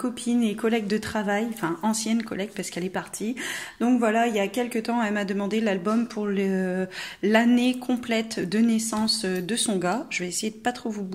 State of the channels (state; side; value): identical; both; correlation 1.00